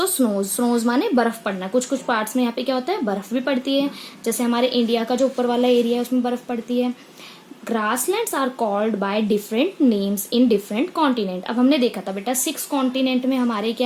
snows माने बर्फ पड़ना। कुछ कुछ पार्ट्स में यहाँ पे क्या होता है? बर्फ भी पड़ती है। जैसे हमारे इंडिया का जो ऊपर वाला एरिया है उसमें बर्फ पड़ती है। Grasslands are called by different names in different continent. अब हमने देखा था बेटा 6 कॉन्टिनेंट में हमारे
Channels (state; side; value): identical; both; correlation 1.00